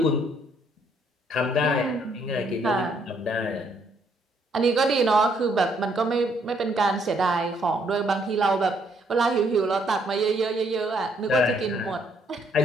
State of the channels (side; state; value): both; normal; correlation 0.69